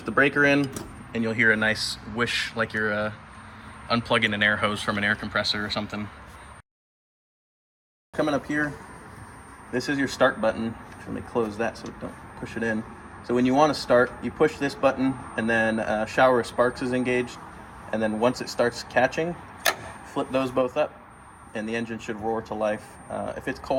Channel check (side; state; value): both; identical; correlation 1.00